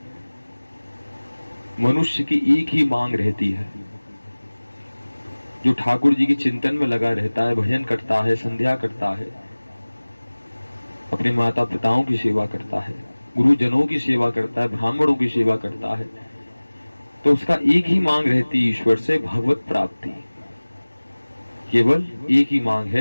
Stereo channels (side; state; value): both; inverted; correlation -1.00